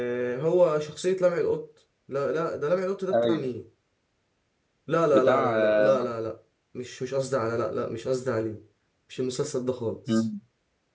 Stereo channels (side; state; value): both; identical; correlation 1.00